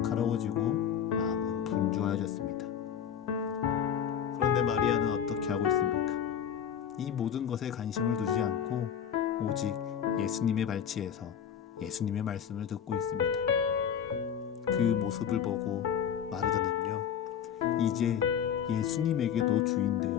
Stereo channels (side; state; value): right; quieter; 8.5 dB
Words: 마음은 분주해졌습니다. 그런데 마리아는 어떻게 하고 있습니까? 이 모든 것에 관심을 두지 않고 오직 예수님의 발치에서 예수님의 말씀을 듣고 있습니다. 그 모습을 보고 마르다는요, 이제 예수님에게도